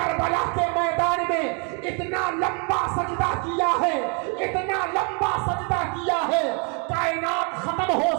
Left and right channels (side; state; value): left; quieter; 36.0 dB